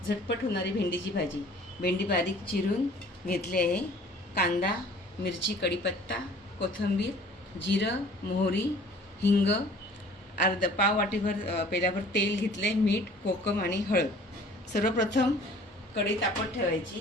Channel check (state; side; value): normal; both; correlation 0.50